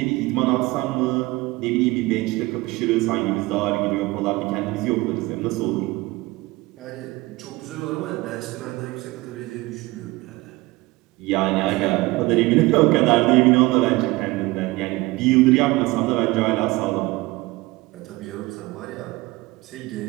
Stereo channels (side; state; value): left; quieter; 21.2 dB